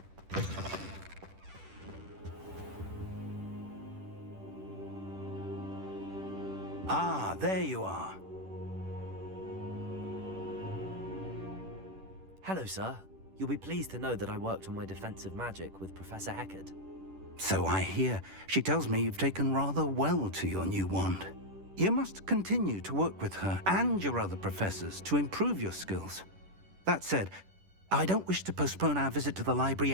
Ah, there you are. Hello, sir. You'll be pleased to know that I worked on my defensive magic with Professor Heckard. So I hear. She tells me you've taken rather well to your new wand. You must continue to work with her and your other professors to improve your skills. That said, I don't wish to postpone our visit to the library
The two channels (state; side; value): late; left; 10 ms